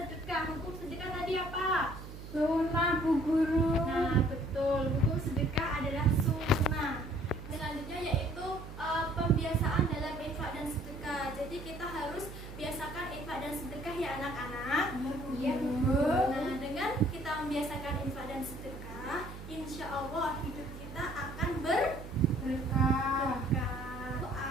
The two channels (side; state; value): right; noise; hum, 12 dB below the sound